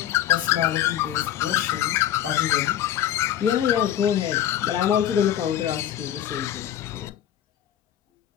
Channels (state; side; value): quieter; right; 11.2 dB